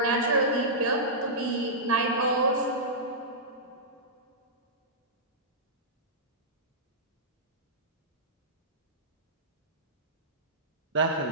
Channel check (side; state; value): both; normal; correlation -0.15